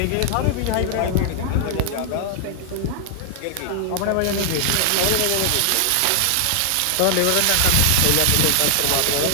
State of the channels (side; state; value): both; different; correlation 0.00